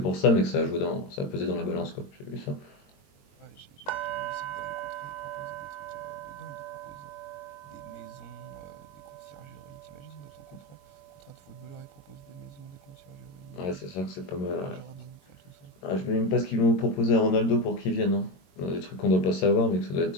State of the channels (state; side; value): late; right; 21 ms